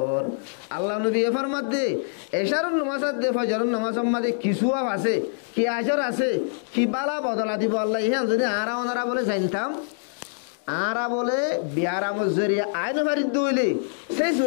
আল্লাহ নবী ফরমাত দে এশারন নামাজ আদে ফজরন নামাজ মাঝে কিছু আছে কি আজর আছে কি বালা বদলা দিব আল্লাহ ইহান যদি আরা ওনারা বলে জানতাম আরা বলে বিয়ারা মজরিয়া আইন ভারিত দইলে সেই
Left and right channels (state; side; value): silent; right; digital silence